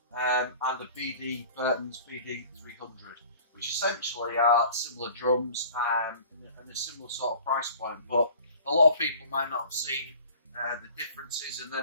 and a Burtons BD300, which essentially are similar drums and a similar sort of price point, but a lot of people might not have seen the differences, and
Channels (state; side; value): inverted; both; correlation -0.46